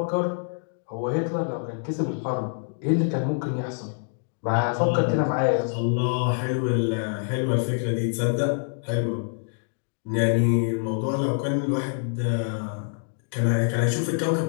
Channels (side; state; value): right; silent; digital silence